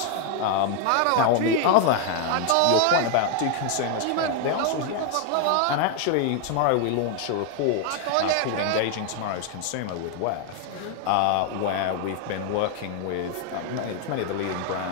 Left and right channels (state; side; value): different; both; correlation 0.00